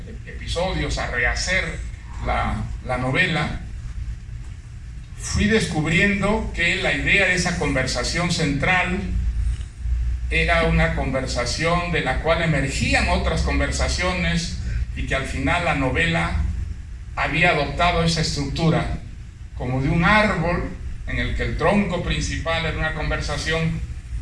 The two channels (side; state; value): both; identical; correlation 1.00